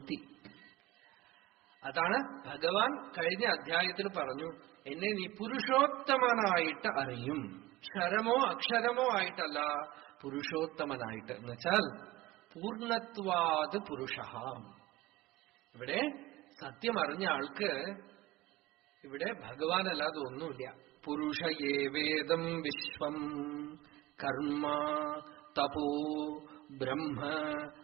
അതാണ് ഭഗവാൻ കഴിഞ്ഞ അധ്യായത്തിൽ പറഞ്ഞു, എന്നെ നീ പുരുഷോത്തമനായിട്ട് അറിയും. ക്ഷരമോ അക്ഷരമോ ആയിട്ടല്ല, പുരുഷോത്തമനായിട്ട്. എന്നുവെച്ചാൽ പൂർണ്ണത്വാത് പുരുഷ. ഇവിടെ സത്യം അറിഞ്ഞ ആൾക്ക് ഇവിടെ ഭഗവാനല്ലാതെ ഒന്നുമില്ല. പുരുഷ ഏവേദം വിശ്വം കർമ്മ തപോ ബ്രഹ്മ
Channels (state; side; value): quieter; left; 18.6 dB